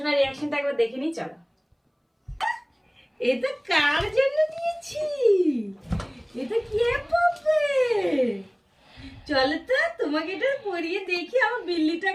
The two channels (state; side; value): identical; both; correlation 1.00